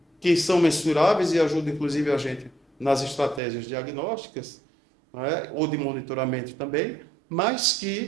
que são mensuráveis e ajudam inclusive a gente nas estratégias diagnósticas, né? Ou de monitoramento também, mas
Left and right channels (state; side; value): drops out; left; at 3.4 s